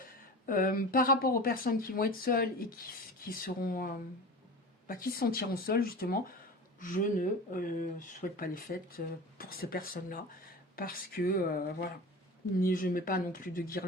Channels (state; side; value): normal; both; correlation 0.33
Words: par rapport aux personnes qui vont être seules et qui seront, qui se sentiront seules justement, je ne souhaite pas les fêtes pour ces personnes-là parce que voilà, je ne mets pas non plus de